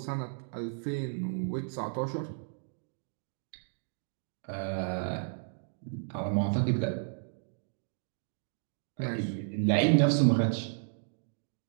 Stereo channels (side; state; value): left; silent; digital silence